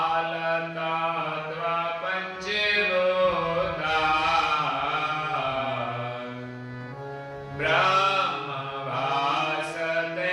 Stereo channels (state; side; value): identical; both; correlation 1.00